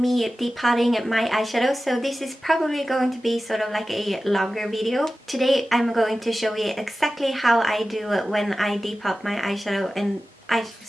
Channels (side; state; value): both; normal; correlation 0.95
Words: depotting my eyeshadow. So this is probably going to be sort of like a longer video. Today I'm going to show you exactly how I do when I depot my eyeshadow and